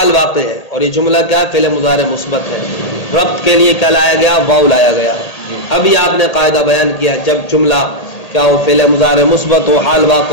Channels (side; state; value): right; late; 1.8 ms